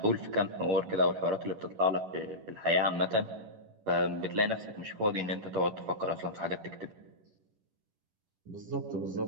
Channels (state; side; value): late; left; 11 ms